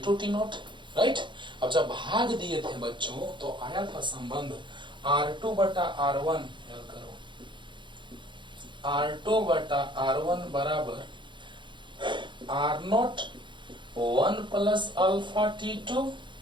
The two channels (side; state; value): left; late; 0.23 ms